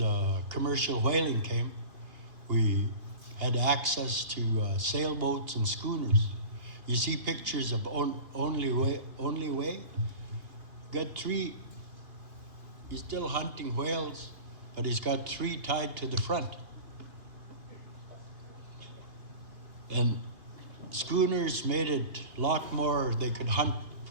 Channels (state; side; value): late; left; 2.8 ms